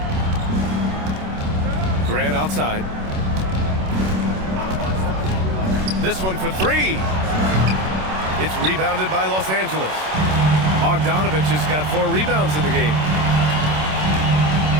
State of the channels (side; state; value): left; late; 27 ms